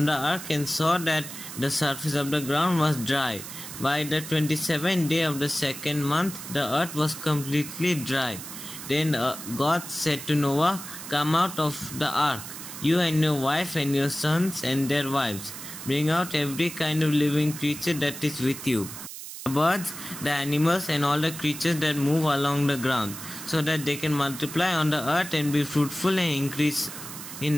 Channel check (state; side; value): noise; right; hiss, 11 dB below the sound